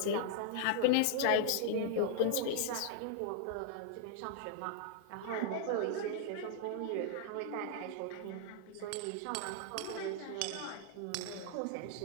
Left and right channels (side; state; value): both; different; correlation -0.01